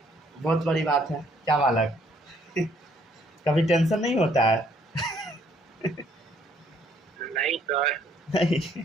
बहुत बड़ी बात है, क्या बालक कभी टेंशन नहीं होता है? नहीं सर, नहीं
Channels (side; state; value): both; normal; correlation 0.65